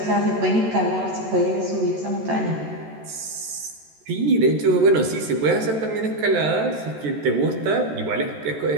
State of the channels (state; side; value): late; left; 14 ms